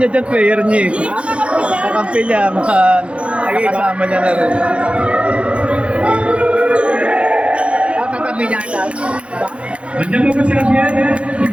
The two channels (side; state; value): left; late; 0.060 ms